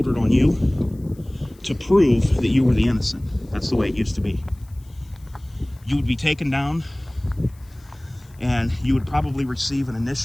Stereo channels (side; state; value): left; noise; hiss, 30 dB below the sound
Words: on you to prove that you were the innocent. That's the way it used to be. You would be taken down, and you would probably receive an